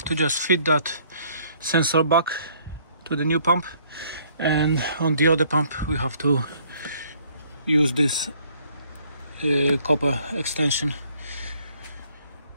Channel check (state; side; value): inverted; both; correlation -0.62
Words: to just fit that sensor back to the new pump, and on the other pump we have to use this copper extension,